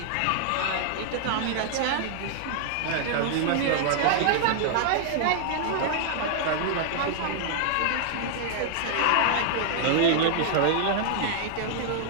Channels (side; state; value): both; different; correlation -0.01